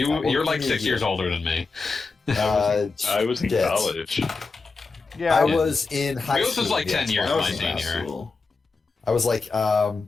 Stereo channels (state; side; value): quieter; right; 4.2 dB